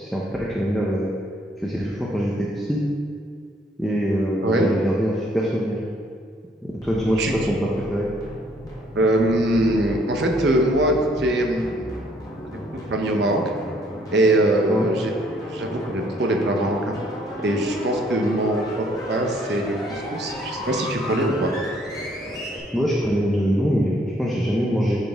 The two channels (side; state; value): both; normal; correlation 0.65